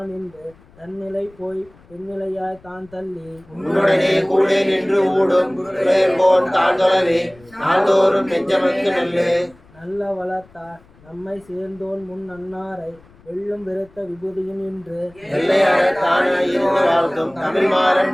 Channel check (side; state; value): left; noise; rumble, 27 dB below the sound